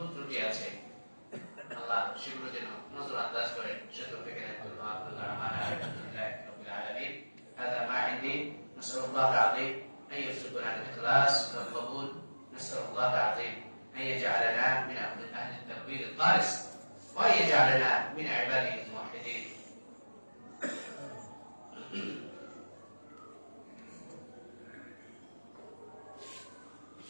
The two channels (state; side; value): inverted; both; correlation -1.00